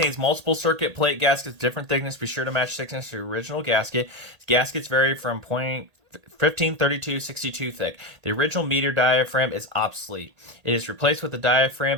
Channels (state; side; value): late; left; 1.8 ms